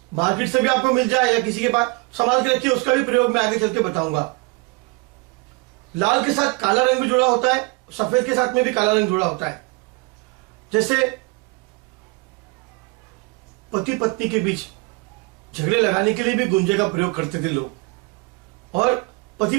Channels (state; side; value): quieter; left; 26.9 dB